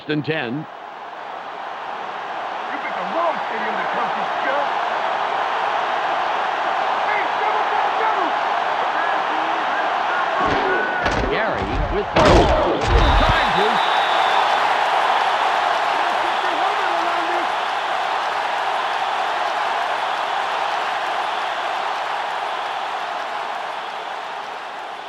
and 10. With charges.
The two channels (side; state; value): both; identical; correlation 1.00